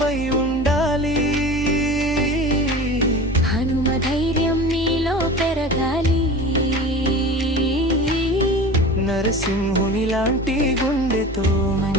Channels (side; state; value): both; normal; correlation 0.35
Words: ఉండాలి, హనుమ ధైర్యం నీలో పెరగాలి. నరసింహుని లాంటి గుండెతో